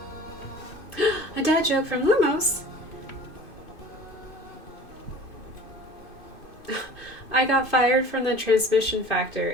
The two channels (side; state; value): right; late; 2.5 ms